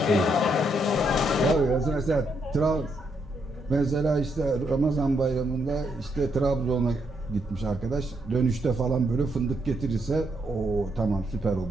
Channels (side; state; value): both; normal; correlation 0.77